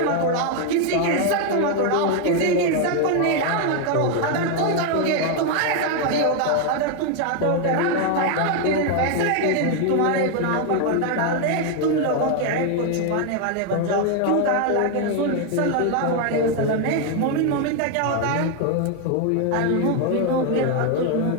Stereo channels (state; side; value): different; both; correlation 0.01